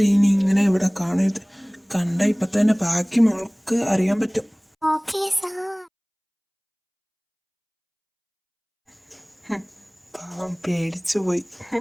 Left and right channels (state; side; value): identical; both; correlation 1.00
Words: ഇനി ഇങ്ങനെ ഇവിടെ കാണരുത്. കണ്ട ഇപ്പൊ തന്നെ ബാക്കി മോൾക്ക് അറിയാൻ പറ്റും. Okay sir. പാവം പേടിച്ചു പോയി.